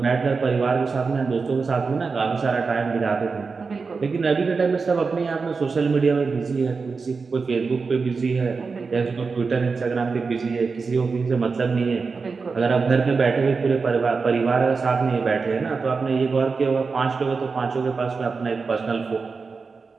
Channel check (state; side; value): quieter; left; 4.7 dB